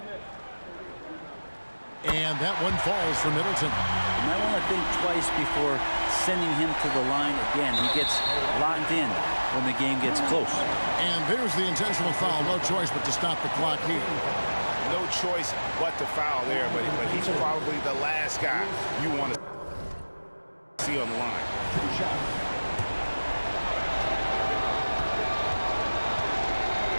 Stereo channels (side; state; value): both; inverted; correlation -1.00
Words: And that one falls for Middleton. You might want to think twice before sending him to the line again. He gets locked in when the game gets close. And there's the intentional foul. No choice but to stop the clock here. No choice but to foul there, but he's probably the last guy you want to see on the line.